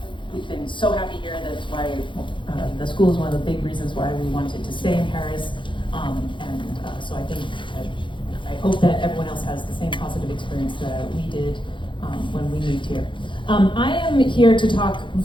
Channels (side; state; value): right; late; 0.24 ms